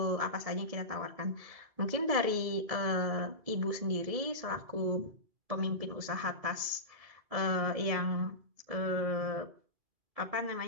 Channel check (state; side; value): late; left; 1.7 ms